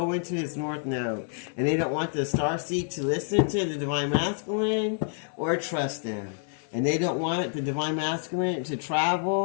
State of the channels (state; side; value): silent; right; 59 dB below the other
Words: into his north node. And they don't want the star seed to listen to the divine masculine or trust them. And they don't want the divine masculine to